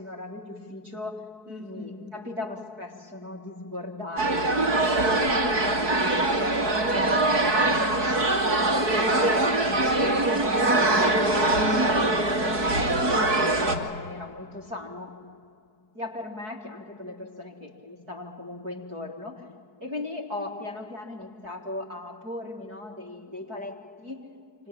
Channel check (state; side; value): late; left; 4.6 ms